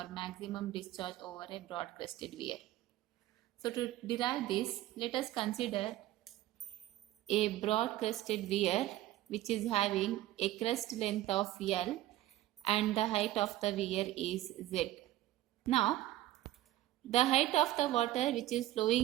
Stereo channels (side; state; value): left; quieter; 15.1 dB